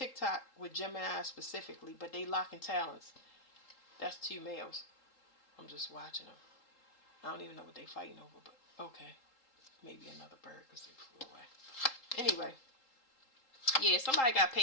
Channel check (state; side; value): late; right; 3.8 ms